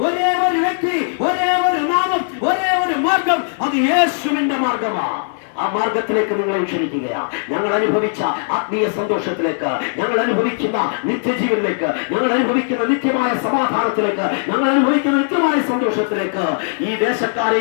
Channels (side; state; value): right; silent; digital silence